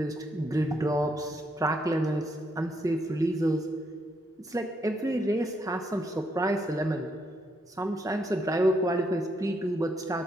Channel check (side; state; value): both; normal; correlation 0.76